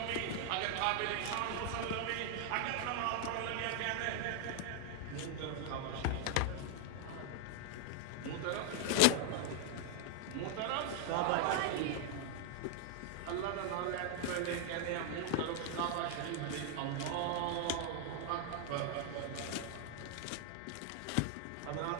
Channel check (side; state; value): both; different; correlation 0.00